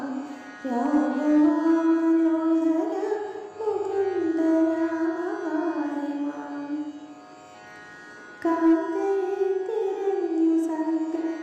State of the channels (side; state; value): both; identical; correlation 1.00